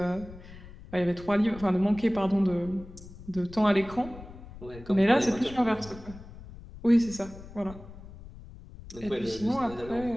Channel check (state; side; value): noise; left; rumble, 16 dB below the sound